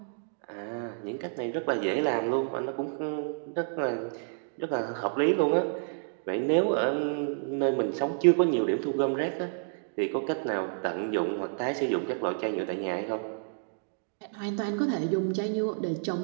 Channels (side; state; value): left; silent; digital silence